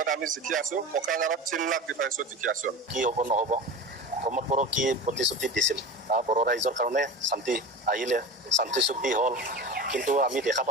আমি জিকি আছো কোকৰাঝাৰত 3 লাখ ডিফাৰেন্সত জিকি আছো কি হ'ব নহ'ব প্ৰমোদ বড়ো কি প্ৰতিশ্ৰুতি দিছিল বড়ো ৰাইজৰ কাৰণে শান্তি আহিলে শান্তি চুক্তি হ'ল কিন্তু আমি দেখা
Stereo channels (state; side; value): normal; both; correlation 0.31